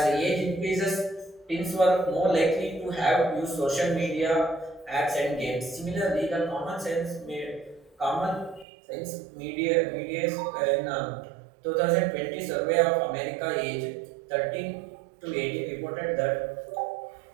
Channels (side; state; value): left; drops out; at 8.7 s